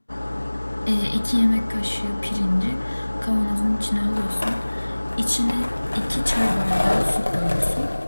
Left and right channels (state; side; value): inverted; both; correlation -1.00